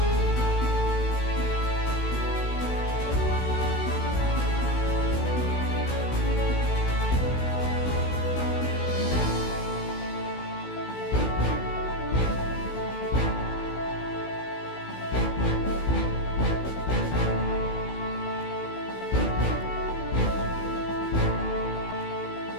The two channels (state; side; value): late; right; 16 ms